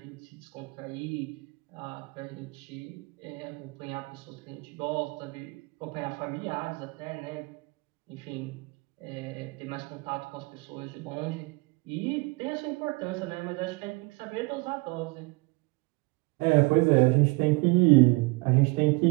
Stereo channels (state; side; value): quieter; left; 27.0 dB